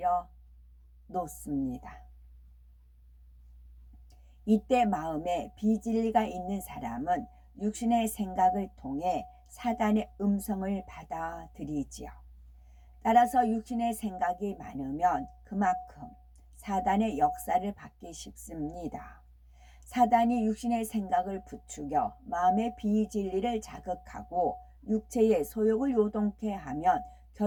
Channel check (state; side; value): identical; both; correlation 1.00